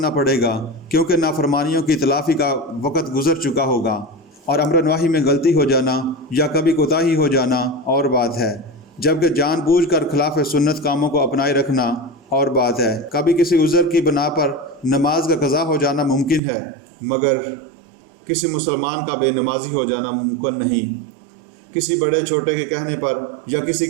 پڑے گا، کیونکہ نافرمانیوں کی تلافی کا وقت گزر چکا ہوگا، اور امر نواہی میں غلطی ہو جانا یا کبھی کوتاہی ہو جانا اور بات ہے، جبکہ جان بوجھ کر خلاف سنت کاموں کو اپنائے رکھنا اور بات ہے۔ کبھی کسی عذر کی بنا پر نماز کا قضا ہو جانا ممکن ہے مگر کسی مسلمان کا بے نمازی ہو جانا ممکن نہیں۔ کسی بڑے چھوٹے کے کہنے پر یا کسی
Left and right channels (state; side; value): drops out; left; at 16.4 s